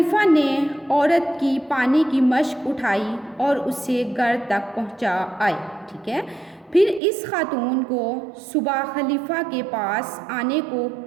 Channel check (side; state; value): left; drops out; at 7.0 s